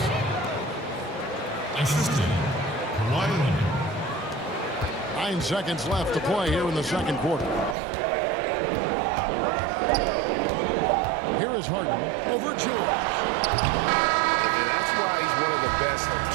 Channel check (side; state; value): left; drops out; at 7.8 s